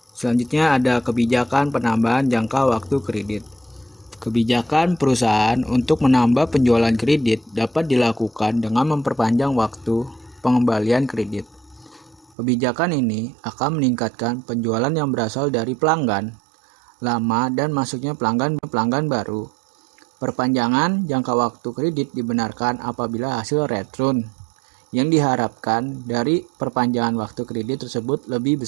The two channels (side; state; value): left; drops out; at 12.4 s